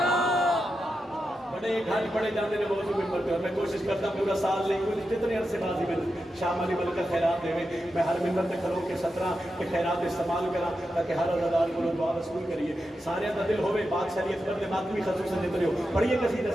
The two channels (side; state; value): both; normal; correlation 0.88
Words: بڑے گھاٹ پڑے جانے نے موضوع ممبر پہ اور میں کوشش کرتا پورا سال نہیں کوئی جتنے عرصے بازی میں شام علی ملکہ خیرات دے میں ہر ممبر تے کھلو کے 17 کے خیرات استعمال کرا تاکہ ہر عزادار کو دعا رسول کریے سارے دا دل ہوئے بادشاہ علی اکبر دے ماتمی خصوصا جتنے ہو پڑھیے قصیدہ